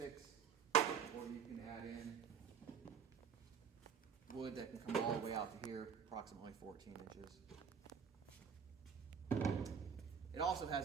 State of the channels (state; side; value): quieter; left; 7.2 dB